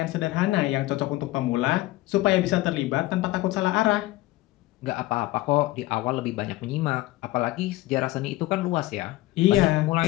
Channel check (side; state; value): right; quieter; 18.1 dB